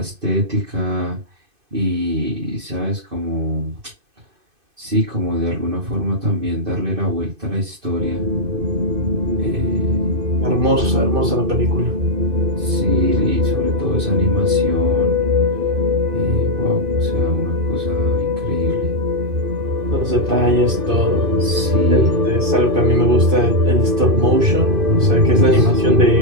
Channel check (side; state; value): left; late; 2.5 ms